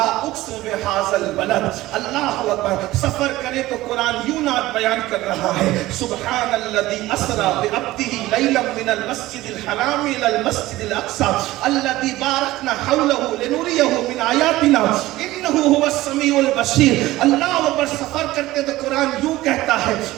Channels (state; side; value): quieter; left; 17.2 dB